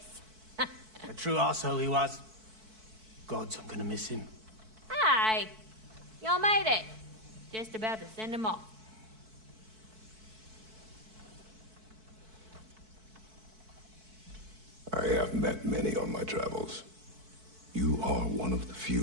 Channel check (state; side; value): late; left; 4.6 ms